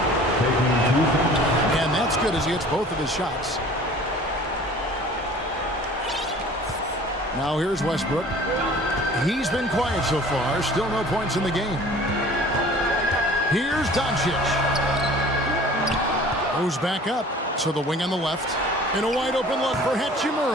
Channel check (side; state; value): both; normal; correlation 0.47